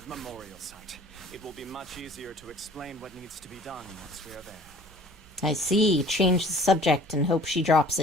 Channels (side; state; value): both; normal; correlation 0.50